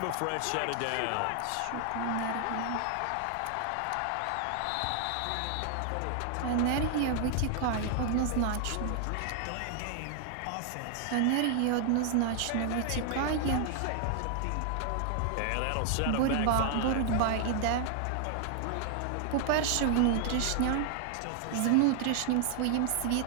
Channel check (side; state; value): both; different; correlation 0.00